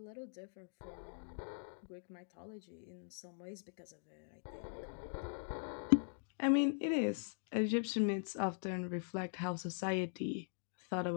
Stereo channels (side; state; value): right; silent; digital silence